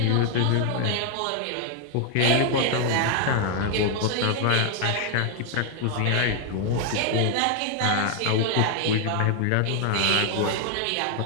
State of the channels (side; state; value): both; different; correlation 0.00